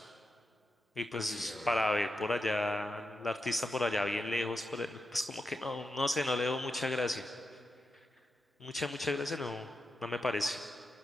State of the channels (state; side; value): normal; both; correlation 0.87